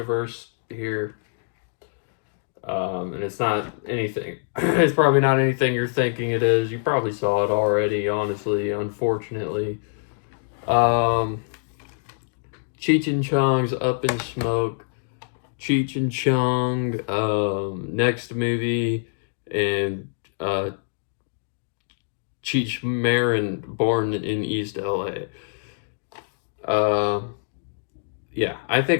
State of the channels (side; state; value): right; silent; digital silence